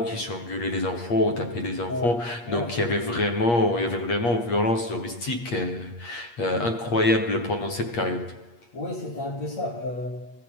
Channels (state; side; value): late; right; 8.5 ms